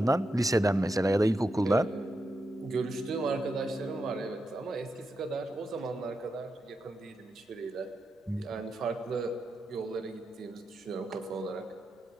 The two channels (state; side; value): normal; both; correlation 0.87